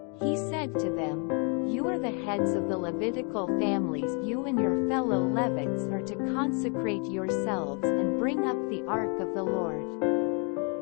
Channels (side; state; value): right; quieter; 36.1 dB